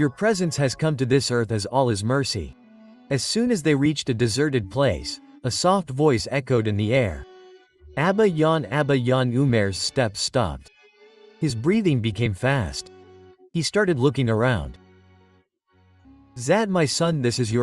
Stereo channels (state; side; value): identical; both; correlation 1.00